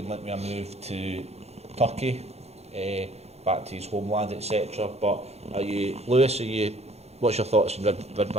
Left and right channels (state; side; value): late; left; 0.31 ms